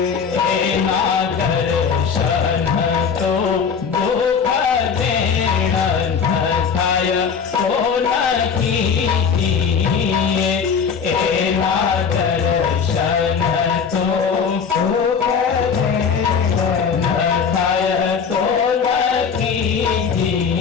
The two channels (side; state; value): right; quieter; 6.4 dB